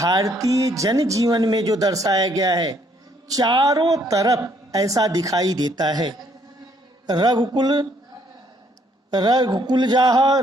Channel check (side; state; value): both; normal; correlation 0.67